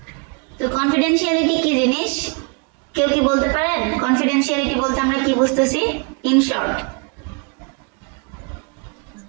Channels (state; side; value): quieter; left; 34.2 dB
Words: তো কনফিডেন্সিয়ালিটি কি জিনিস কেউ কি বলতে পারেন? কনফিডেন্সিয়ালিটি বলতে আমরা কি বুঝতেছি ইন শর্ট?